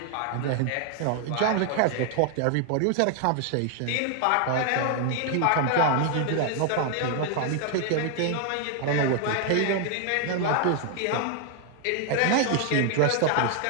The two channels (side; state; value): both; different; correlation 0.00